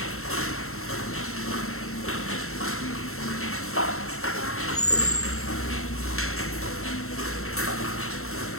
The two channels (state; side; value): late; right; 0.63 ms